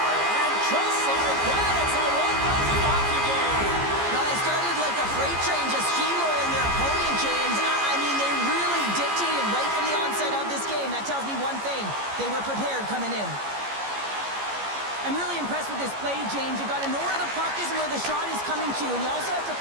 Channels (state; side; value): late; left; 14 ms